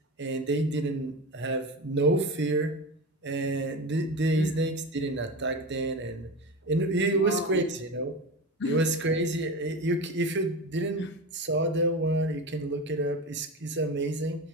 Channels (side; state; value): both; normal; correlation 0.26